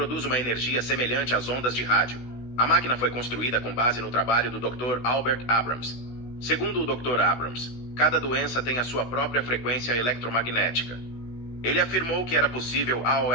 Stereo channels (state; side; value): late; right; 16 ms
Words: uma energia semelhante às ondas de rádio. A máquina foi construída com base no trabalho do Dr. Albert Abrams. Segundo o Dr. Abrams, cada doença tem a sua própria frequência eletromagnética. Ele afirmou que era possível